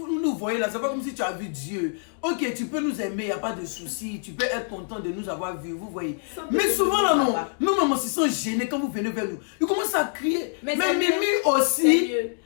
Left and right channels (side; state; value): right; silent; digital silence